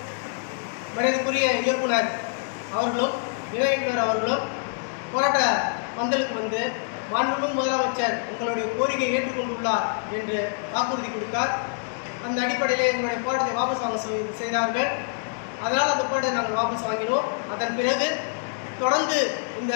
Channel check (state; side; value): silent; right; 61 dB below the other